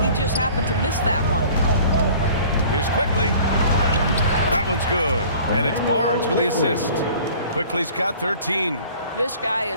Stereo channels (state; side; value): inverted; both; correlation -0.48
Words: He just happened to miss that one. Here's Quickly. That one's good. And it's Barnes with the assist. Quickly's got 13. This guy